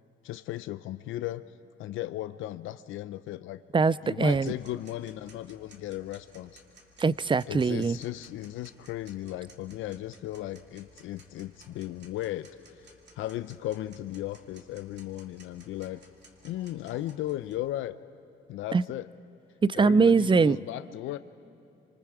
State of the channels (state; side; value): normal; both; correlation 0.60